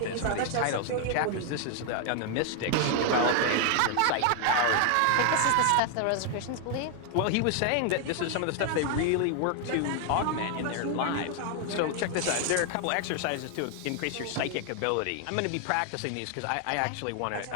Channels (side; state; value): both; different; correlation 0.01